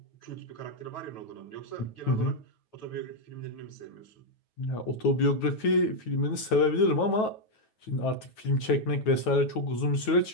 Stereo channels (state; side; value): late; right; 9.3 ms